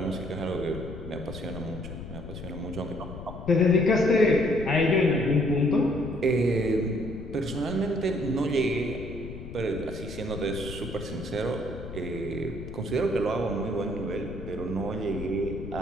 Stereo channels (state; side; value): noise; left; rumble, 10 dB below the sound